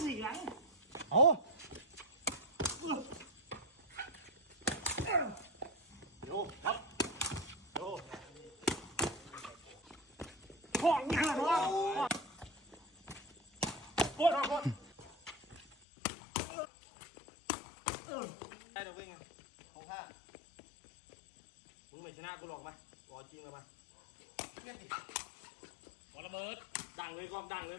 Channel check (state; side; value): drops out; right; at 15.8 s